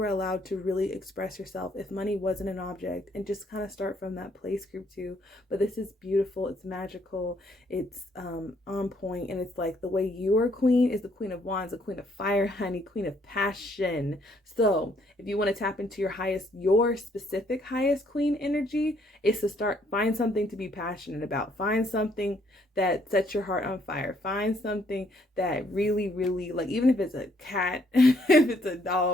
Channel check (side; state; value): both; normal; correlation 0.68